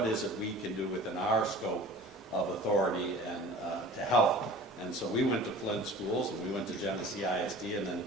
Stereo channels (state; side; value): normal; both; correlation 0.42